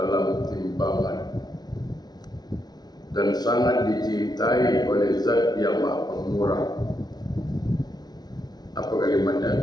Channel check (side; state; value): right; late; 0.19 ms